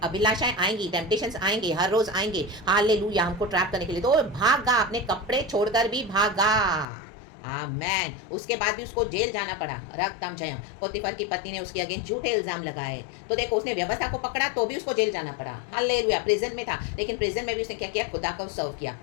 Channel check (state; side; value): drops out; right; at 6.9 s